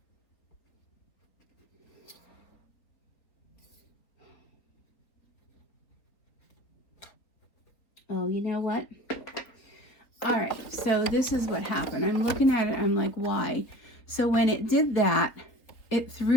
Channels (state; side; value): late; right; 4.2 ms